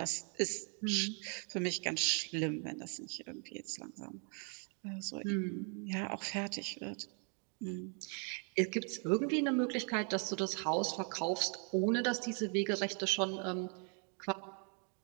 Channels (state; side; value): quieter; left; 39.6 dB